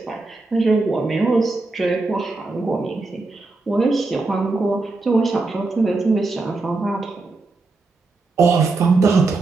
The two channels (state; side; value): quieter; left; 3.5 dB